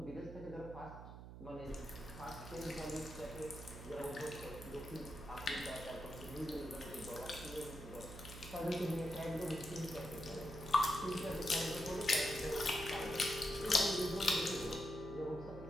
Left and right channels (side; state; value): right; noise; hum, 12 dB below the sound